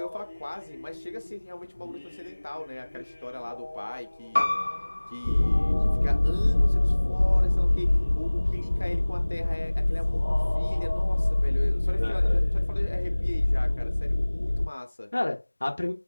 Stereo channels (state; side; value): inverted; both; correlation -1.00